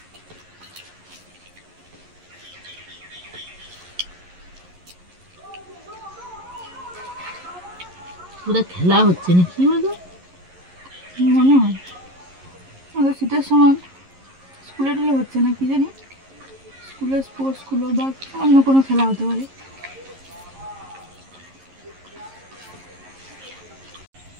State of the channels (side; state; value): left; late; 11 ms